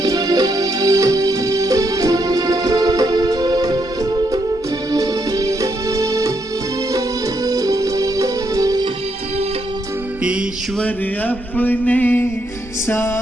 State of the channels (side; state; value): both; normal; correlation 0.77